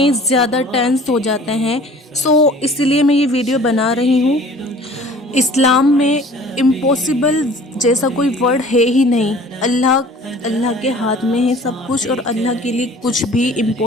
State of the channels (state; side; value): normal; both; correlation 0.48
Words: ज़्यादा टेंस हो जाते हैं। इसलिए मैं ये वीडियो बना रही हूँ। इस्लाम में इम्पॉसिबल जैसा कोई वर्ड है ही नहीं। अल्लाह के हाथ में है सब कुछ और अल्लाह के लिए कुछ भी